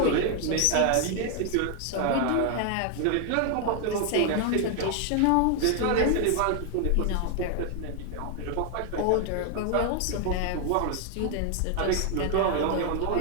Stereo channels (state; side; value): different; both; correlation 0.00